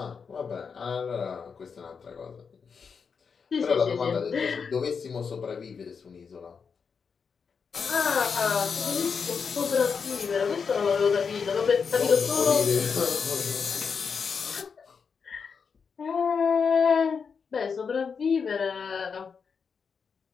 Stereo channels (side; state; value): right; quieter; 5.9 dB